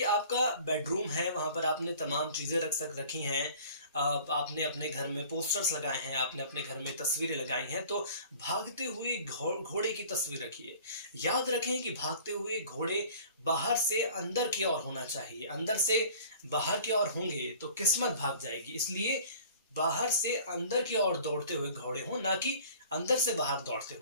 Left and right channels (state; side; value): inverted; both; correlation -0.47